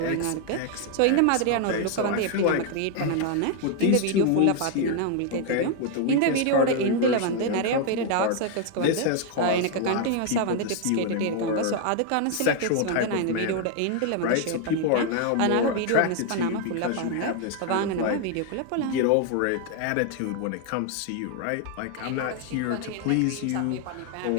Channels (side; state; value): both; different; correlation 0.01